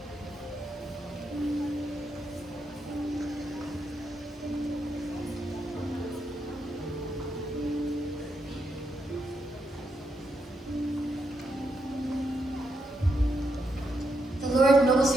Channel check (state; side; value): normal; both; correlation 0.81